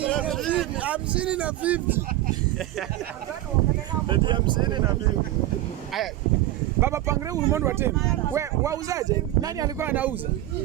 na 50. Eti 50 na 50. Aya. Baba pangre ulimwengu wa tena. We wauzaje? Nani alikuwa anauza?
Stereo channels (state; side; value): quieter; left; 15.0 dB